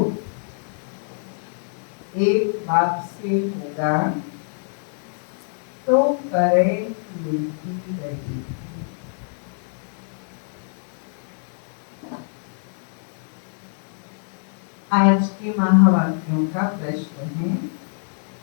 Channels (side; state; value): right; silent; 62 dB below the other